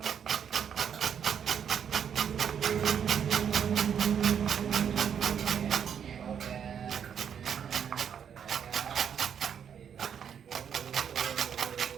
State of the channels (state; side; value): quieter; left; 8.0 dB